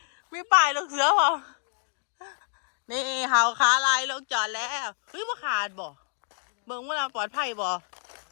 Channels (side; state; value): right; silent; digital silence